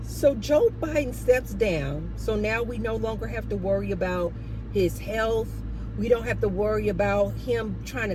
So Joe Biden steps down. So now we no longer have to worry about his health. We don't have to worry about him trying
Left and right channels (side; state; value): both; identical; correlation 1.00